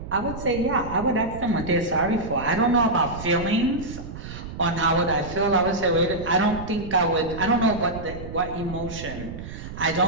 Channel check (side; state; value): right; noise; rumble, 11 dB below the sound